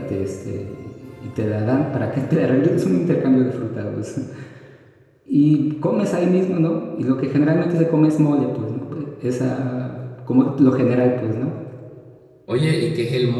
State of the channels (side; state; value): both; identical; correlation 1.00